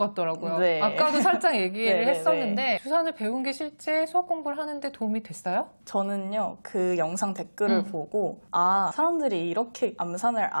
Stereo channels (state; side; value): inverted; both; correlation -1.00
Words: 네. 아까도 살짝 얘기를 네, 네, 했었는데 주산을 배운 게 실제 수학 공부를 하는데 도움이 됐어요? 저는요, 그 영상 댓글을 보고, 아, 사람들이 이렇게 암산을